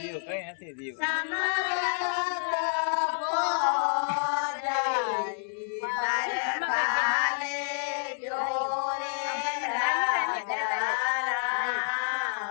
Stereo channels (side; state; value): right; silent; digital silence